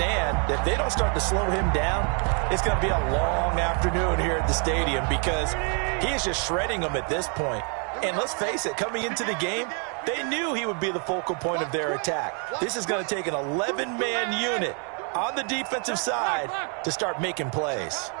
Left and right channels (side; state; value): left; quieter; 38.8 dB